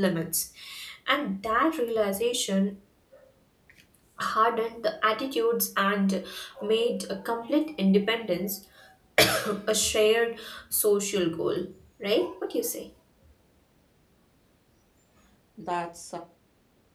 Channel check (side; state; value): both; identical; correlation 1.00